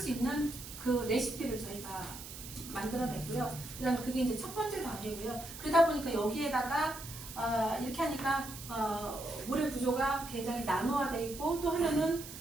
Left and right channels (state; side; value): noise; right; hiss, 12 dB below the sound